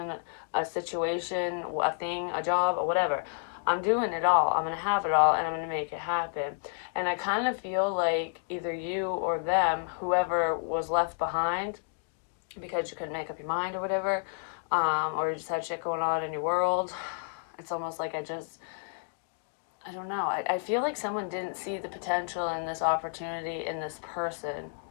a situation, a thing, a job, or whatever. I'm doing it all. I'm going to have it all, and I'm going to make it happen. And I kind of feel like either you or them, whoever was left behind, because you couldn't make up your mind or whatever, or you just had shit going on in your world. It's almost like I don't know. I feel like someone didn't see the potential in this opportunity in this person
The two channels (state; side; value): silent; right; digital silence